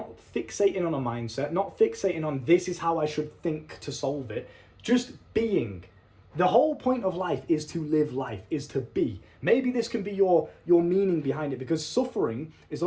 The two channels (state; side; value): identical; both; correlation 1.00